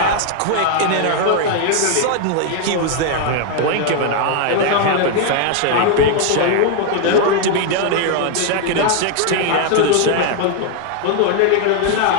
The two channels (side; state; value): both; different; correlation 0.00